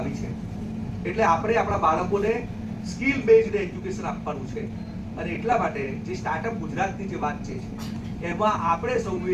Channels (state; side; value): identical; both; correlation 1.00